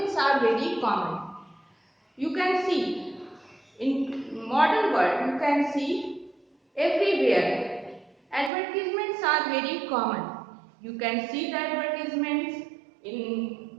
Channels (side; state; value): left; drops out; at 8.5 s